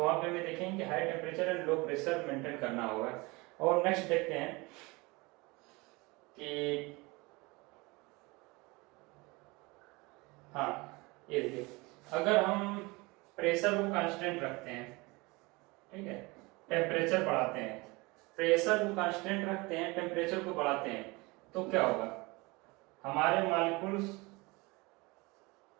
वहां पे हमें देखेंगे कि high temperature and low pressure maintain करना होगा। और नेक्स्ट देखते हैं कि हाँ, ये देखिए, अगर हम प्रेशर को कांस्टेंट रखते हैं, ठीक है, टेम्परेचर बढ़ाते हैं, प्रेशर को कांस्टेंट रखते हैं, टेम्परेचर को बढ़ाते हैं, तो क्या होगा, हमारे मॉलिक्यूल्स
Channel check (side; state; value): left; quieter; 24.6 dB